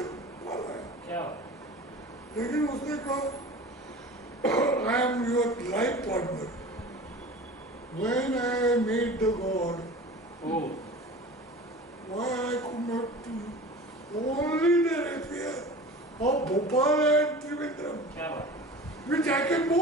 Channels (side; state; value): both; normal; correlation 0.38